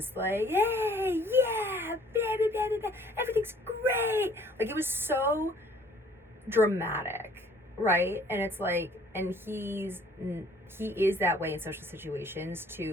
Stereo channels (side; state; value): both; normal; correlation 0.56